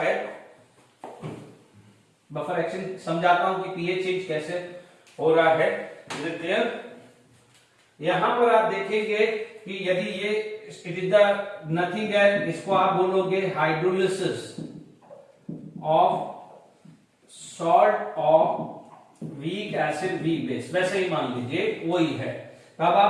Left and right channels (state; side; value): identical; both; correlation 1.00